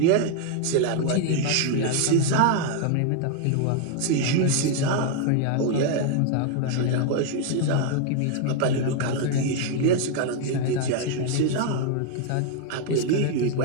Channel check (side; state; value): both; different; correlation 0.00